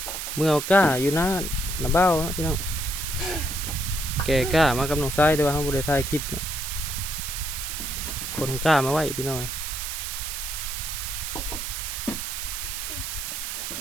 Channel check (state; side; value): noise; right; hiss, 4 dB below the sound